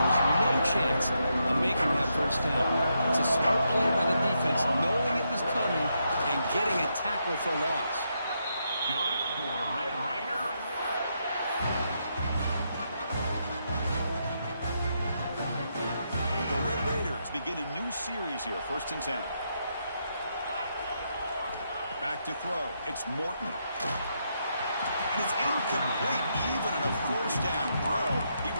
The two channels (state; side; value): inverted; both; correlation -0.80